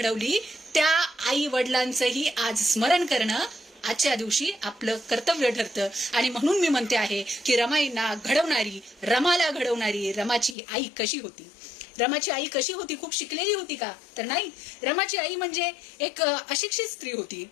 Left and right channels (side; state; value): right; drops out; at 10.6 s